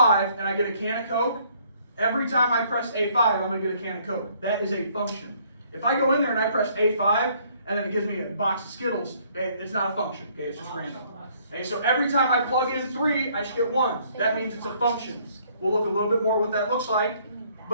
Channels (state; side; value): inverted; both; correlation -0.63